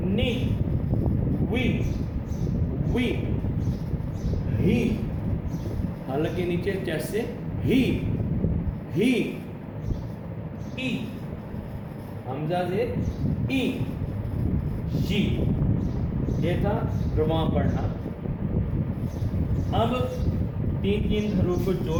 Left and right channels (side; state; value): both; identical; correlation 1.00